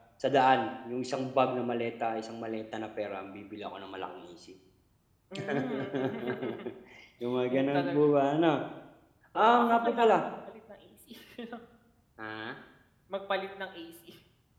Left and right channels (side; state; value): both; identical; correlation 1.00